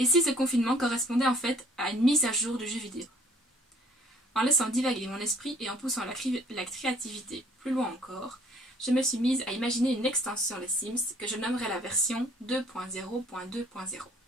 si ce confinement correspondait en fait à une mise à jour du jeu vidéo? En laissant divaguer mon esprit et en poussant la créativité plus loin encore, je me suis mise à imaginer une extension des Sims que je nommerais la version 2.0.2.0.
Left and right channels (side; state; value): both; normal; correlation 0.57